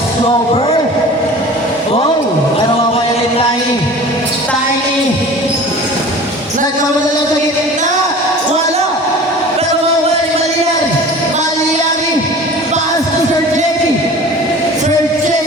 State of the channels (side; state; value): both; normal; correlation 0.41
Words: Oh, pero mawala ni Tiny. Tiny. Nagmamadala sa gitna. Wala. Pero mawala ni Maliari. Maliari. Pass to Sir JP. Sir